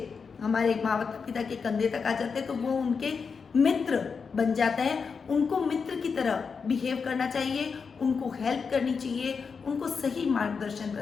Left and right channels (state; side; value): quieter; right; 5.5 dB